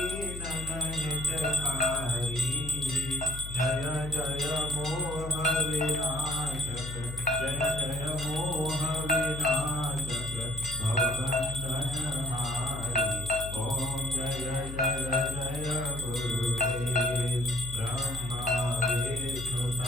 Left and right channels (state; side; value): noise; left; hum, 8 dB below the sound